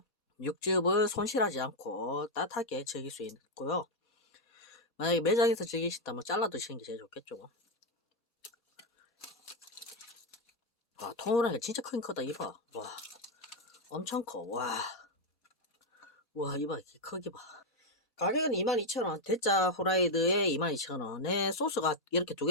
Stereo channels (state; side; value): normal; both; correlation 0.02